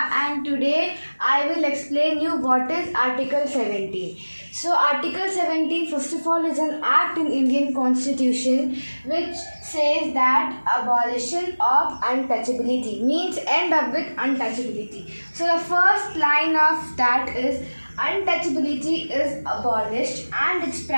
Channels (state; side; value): inverted; both; correlation -1.00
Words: and today I will explain you what is Article 17. So Article 17 first of all is an act in Indian Constitution which says that abolition of untouchability means end up with untouchability. So the first line of that is untouchability is abolished and its